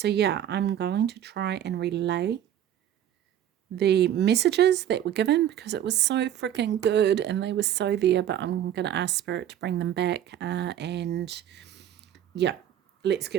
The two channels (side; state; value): left; quieter; 10.8 dB